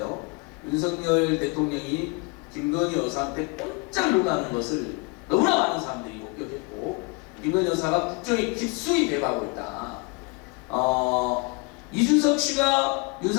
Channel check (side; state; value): right; quieter; 29.8 dB